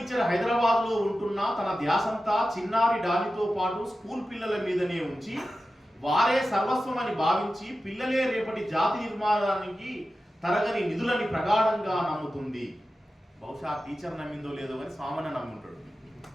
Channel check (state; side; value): normal; both; correlation 0.93